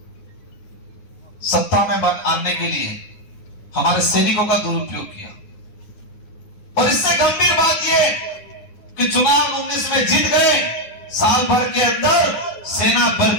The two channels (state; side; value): late; right; 9.9 ms